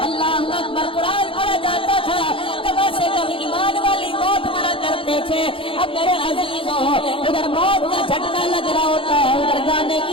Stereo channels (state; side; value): late; right; 0.26 ms